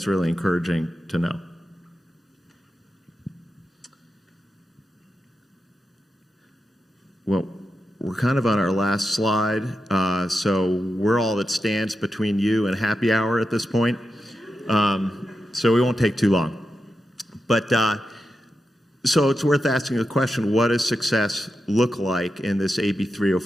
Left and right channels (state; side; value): normal; both; correlation 0.89